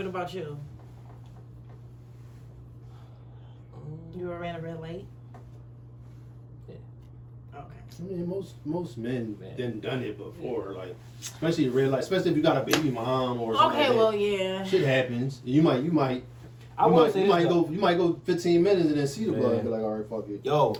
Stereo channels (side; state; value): both; identical; correlation 1.00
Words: about you? You ever ran a red light? Yeah. Okay. I mean, most men Man. done it before, like especially red light, especially if you got a baby mom or something. Okay, like well, that. yeah. Shit happens. You might I will say you this, might though. go 15 minutes and then see the blood Man. and be like, all right, fuck it. Yo,